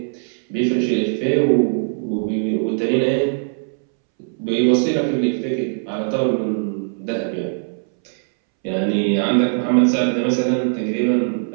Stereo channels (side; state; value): left; silent; 66 dB below the other